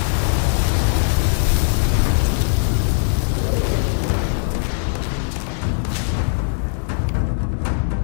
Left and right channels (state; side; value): silent; right; digital silence